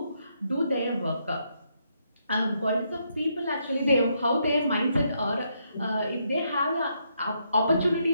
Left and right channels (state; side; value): inverted; both; correlation -0.77